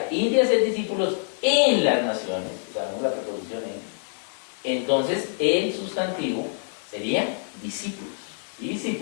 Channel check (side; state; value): right; silent; digital silence